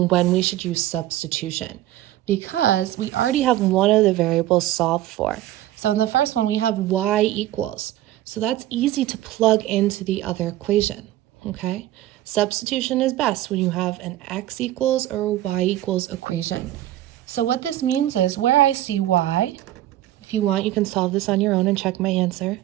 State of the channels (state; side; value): quieter; left; 14.3 dB